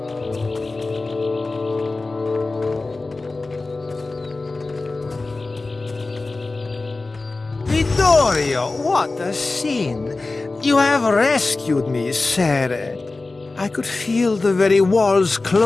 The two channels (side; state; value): right; quieter; 3.4 dB